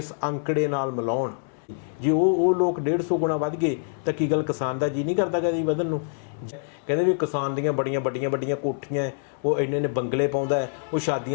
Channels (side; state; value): right; silent; 61 dB below the other